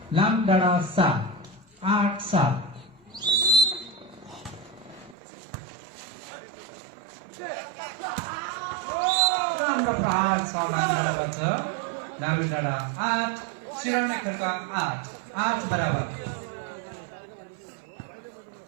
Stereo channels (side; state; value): left; drops out; at 5.2 s